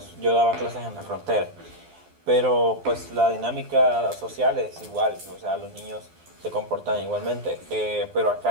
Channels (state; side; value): late; left; 12 ms